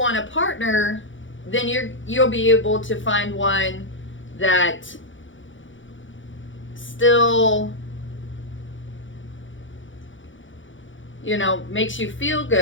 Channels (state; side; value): late; right; 0.56 ms